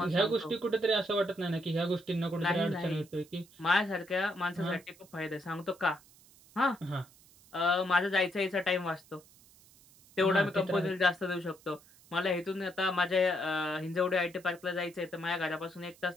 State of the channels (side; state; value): right; noise; hiss, 26 dB below the sound